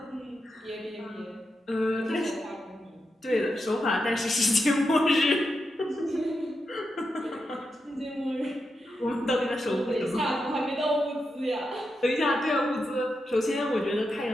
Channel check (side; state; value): both; normal; correlation 0.86